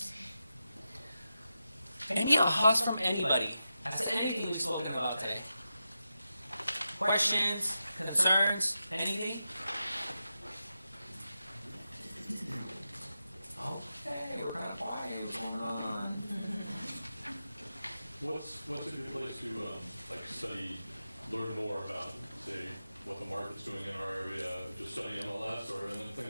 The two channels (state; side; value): inverted; both; correlation -0.89